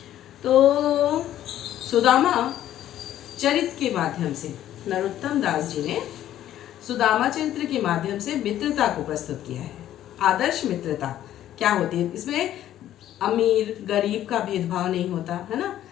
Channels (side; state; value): right; quieter; 12.2 dB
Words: तो सुदामा चरित के माध्यम से नरोत्तम दास जी ने सुदामा चरित्र के माध्यम से मित्रता को प्रस्तुत किया है। आदर्श मित्रता क्या होती है, इसमें अमीर गरीब का भेदभाव नहीं होता, है ना।